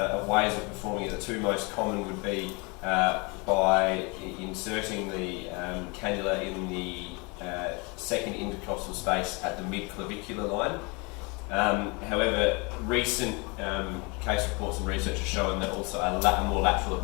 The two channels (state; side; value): quieter; right; 29.3 dB